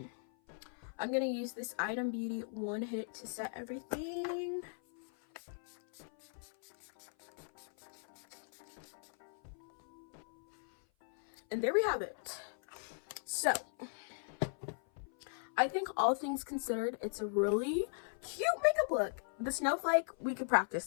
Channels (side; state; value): right; silent; 52 dB below the other